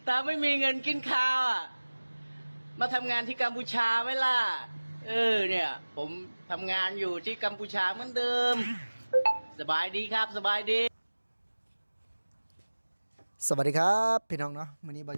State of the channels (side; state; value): both; inverted; correlation -1.00